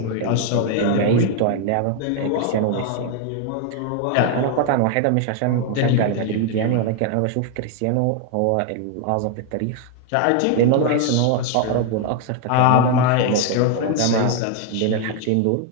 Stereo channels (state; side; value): different; both; correlation 0.00